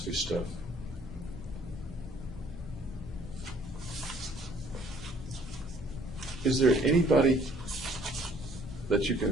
stuff. Is there anybody that you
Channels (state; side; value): normal; both; correlation 0.59